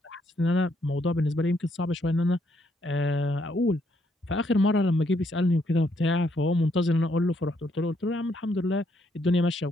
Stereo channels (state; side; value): normal; both; correlation 0.73